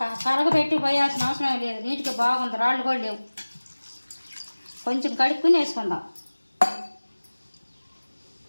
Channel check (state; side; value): inverted; both; correlation -1.00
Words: కరగబెట్టి పోయాల్సిన అవసరం లేదు. నీట్గా బాగుంది, రాళ్ళు కూడా లేవు. కొంచెం కడుక్కుని వేసుకుందాం.